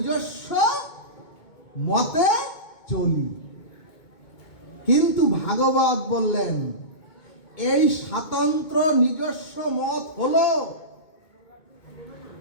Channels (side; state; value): right; late; 2.2 ms